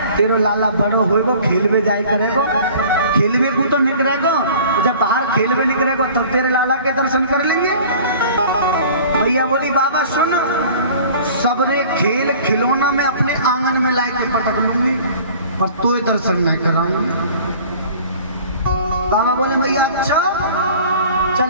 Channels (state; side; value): inverted; both; correlation -0.47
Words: तेरो लाला बड़ो होएगो खेलवे जाए करेगो, खेलवे को तो निकलेगो, जब बाहर खेलवे निकलेगो तब तो तेरे लाला के दर्शन कर लेंगे। भैया बोली बाबा सुन, सबरे खेल खिलौना में अपने आंगन में ला के पटक लूंगी पर तो दर्शन नहीं कराऊंगी। बाबा बोले भैया अच्छा चल